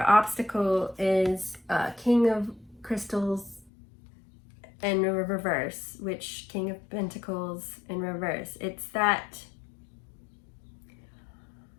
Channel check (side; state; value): right; drops out; at 3.7 s